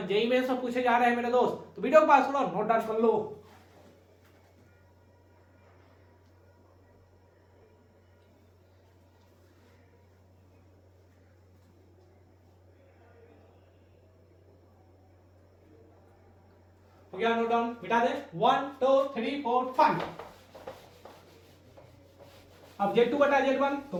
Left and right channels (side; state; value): both; identical; correlation 1.00